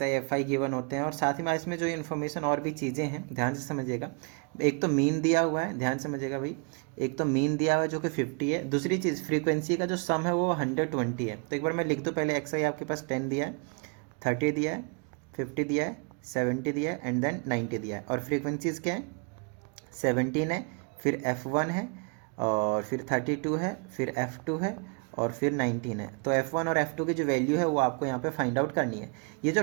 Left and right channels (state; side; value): quieter; left; 35.4 dB